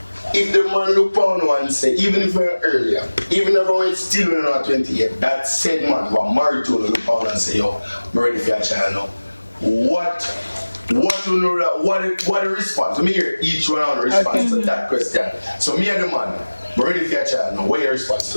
If the man look on you and say, even if you're earlier, even if I still in our 28, that said man who are married to look on and say, yo, I'm ready for your child now. What you know that what the response? Let me hear each one on the response to that question. So me and the man, I'm ready for your child now. What your response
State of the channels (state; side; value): inverted; both; correlation -1.00